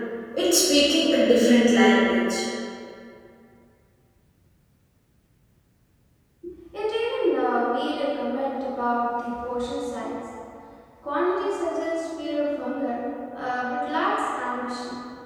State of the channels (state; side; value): identical; both; correlation 1.00